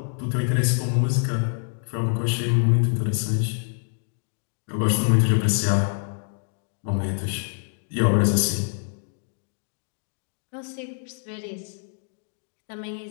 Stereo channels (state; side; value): silent; right; 58 dB below the other